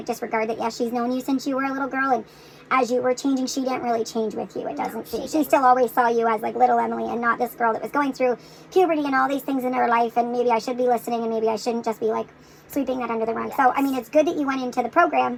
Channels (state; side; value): identical; both; correlation 1.00